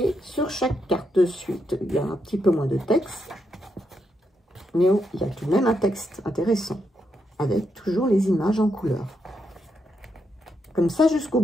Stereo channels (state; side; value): normal; both; correlation 0.81